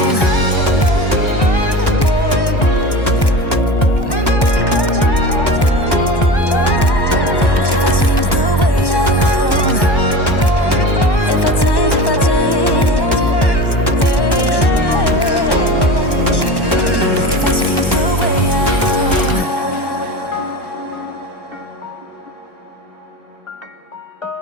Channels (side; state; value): right; late; 1.1 ms